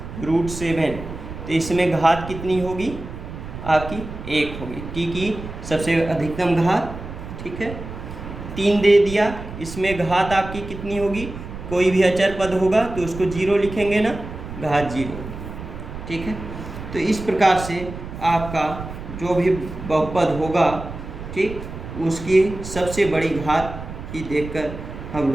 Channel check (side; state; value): right; noise; rumble, 10 dB below the sound